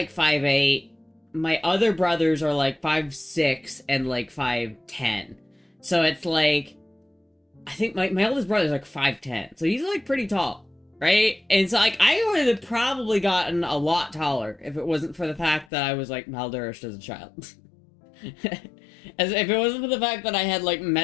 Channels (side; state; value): right; drops out; at 15.7 s